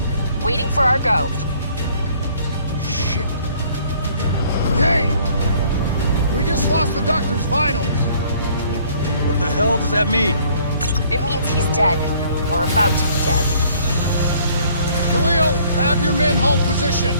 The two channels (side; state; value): both; inverted; correlation -0.59